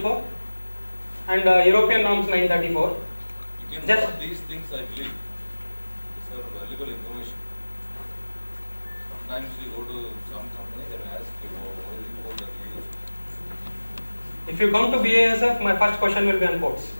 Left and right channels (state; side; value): inverted; both; correlation -1.00